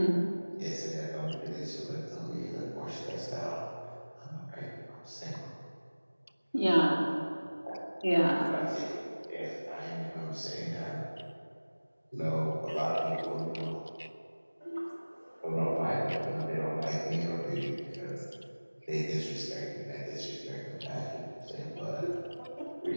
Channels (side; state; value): both; inverted; correlation -1.00